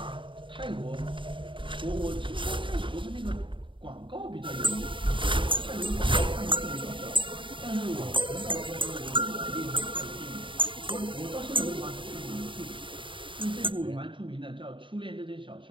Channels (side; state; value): left; late; 0.24 ms